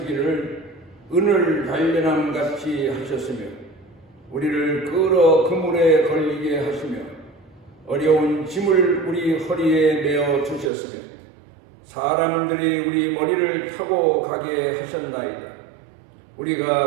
은을 단련함 같이 하셨으며 우리를 끌어 그물에 걸리게 하시며 어려운 짐을 우리 허리에 메어 주셨으며 사람들이 우리 머리를 타고 가게 하셨나이다.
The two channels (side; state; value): left; drops out; at 10.7 s